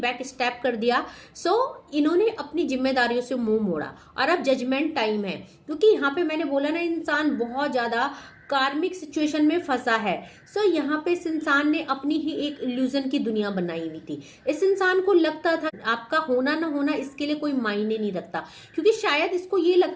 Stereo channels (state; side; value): identical; both; correlation 1.00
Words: स्टेप कर दिया। सो इन्होंने अपनी जिम्मेदारियों से मुंह मोड़ा और अब जजमेंट टाइम है, क्योंकि यहाँ पे मैंने बोला ना, इंसान बहुत ज्यादा कार्मिक सिचुएशन में फंसा है। सो यहाँ पे इस इंसान ने अपनी ही एक इल्यूजन की दुनिया बनाई हुई थी। इस इंसान को लगता था आपका होना ना होना इसके लिए कोई मायने नहीं रखता, क्योंकि शायद इसको ये